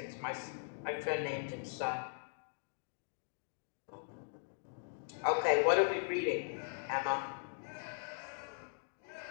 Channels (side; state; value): right; silent; digital silence